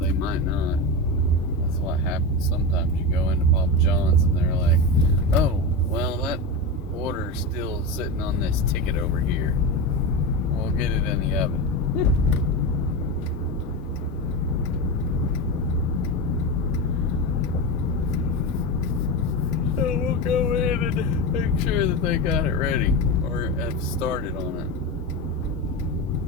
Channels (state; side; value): normal; both; correlation 0.19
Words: they might not. That's what happens sometimes. You go into Papa John's and they're like, oh, well, that order's still sitting on this ticket over here. We'll get it in the oven. So we'll go in and make sure that they got it ready or have started on it.